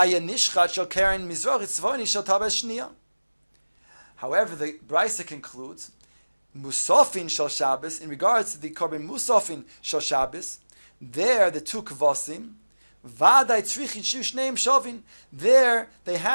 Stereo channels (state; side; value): inverted; both; correlation -1.00